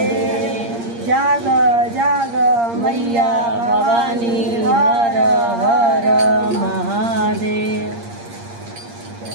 जाग जाग मैया भवानी हर हर महादेव।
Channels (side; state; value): left; late; 8.6 ms